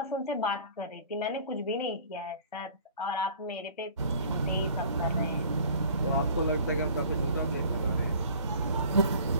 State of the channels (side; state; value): both; inverted; correlation -0.49